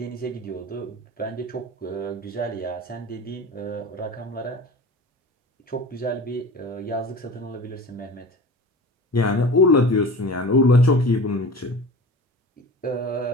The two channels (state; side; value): normal; both; correlation 0.36